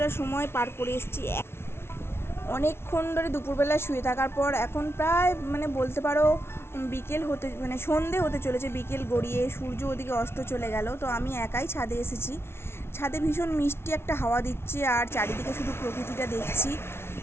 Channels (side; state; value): right; late; 0.12 ms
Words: সময় পার করে এসেছি। অনেকক্ষণ ধরে দুপুরবেলা শুয়ে থাকার পর এখন প্রায় মানে বলতে পারো বিকেল হতে মানে সন্ধে হতে চলেছে, বিকেল গড়িয়ে সূর্য ওদিকে অস্ত চলে গেল। তো আমি একাই ছাদে এসেছি। ছাদে ভীষণ মিষ্টি একটা হাওয়া দিচ্ছে, আর চারিদিকে শুধু প্রকৃতিটা দেখছি।